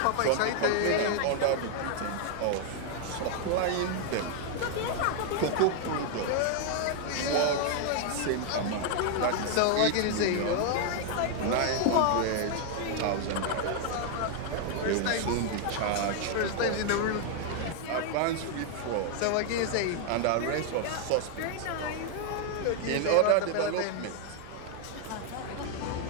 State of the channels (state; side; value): different; both; correlation 0.00